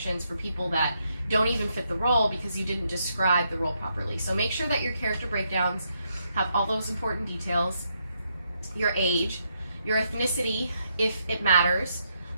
for people that don't even fit the role because you didn't describe the role properly. So make sure that your character breakdowns have all those important details: your age, your ethnicity, if it matters.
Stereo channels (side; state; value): both; inverted; correlation -0.78